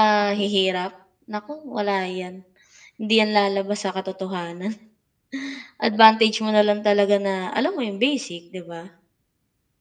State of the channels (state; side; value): identical; both; correlation 1.00